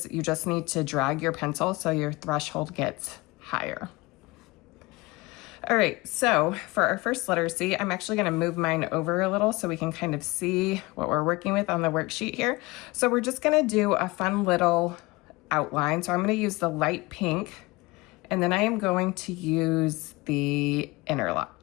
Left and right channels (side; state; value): right; quieter; 22.8 dB